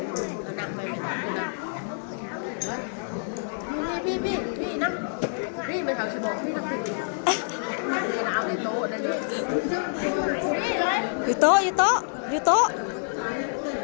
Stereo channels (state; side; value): silent; right; digital silence